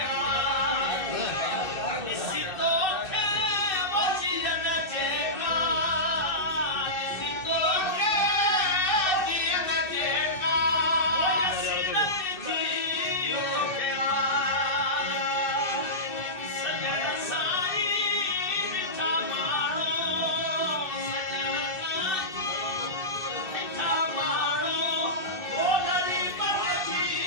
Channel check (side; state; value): right; late; 2.6 ms